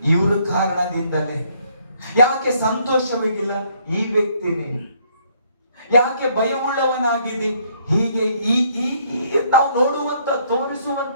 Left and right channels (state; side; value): inverted; both; correlation -0.67